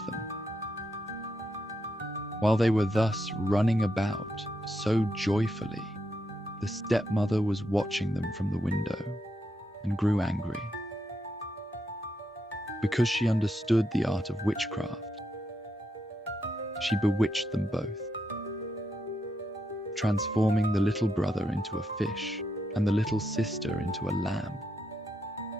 them. While they were thus running about so joyfully, the stepmother was watching them from the window and grew angry. Because she understood the art of witchcraft, she bewitched them both, transforming the little brother into a fish and the little sister into a lamb.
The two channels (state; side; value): normal; both; correlation 0.81